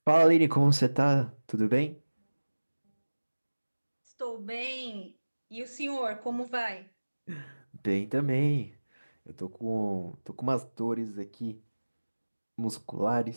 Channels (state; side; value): inverted; both; correlation -1.00